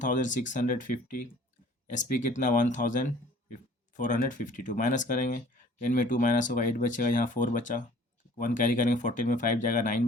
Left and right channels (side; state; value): both; normal; correlation 0.52